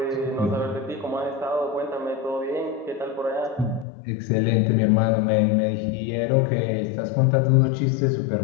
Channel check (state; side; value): drops out; right; at 3.9 s